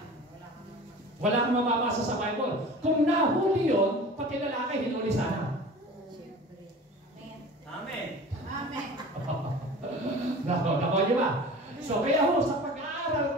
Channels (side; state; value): both; normal; correlation 0.39